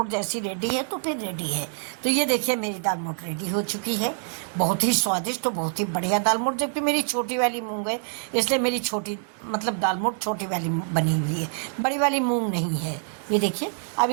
जैसी रेडी है तो फिर रेडी है। तो ये देखिए मेरी दाल मोठ रेडी हो चुकी है, बहुत ही स्वादिष्ट और बहुत ही बढ़िया दाल मोठ। जबकि मेरी छोटी वाली मूंग है, इसलिए मेरी छोटी दाल मोठ छोटी वाली बनी हुई है, बड़ी वाली मूंग नहीं है। ये देखिए अब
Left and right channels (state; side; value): silent; left; 61 dB below the other